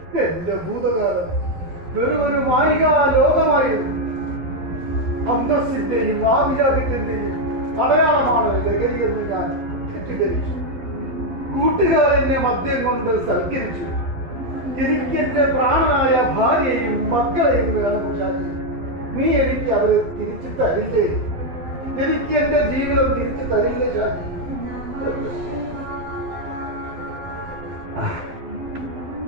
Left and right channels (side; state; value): left; late; 11 ms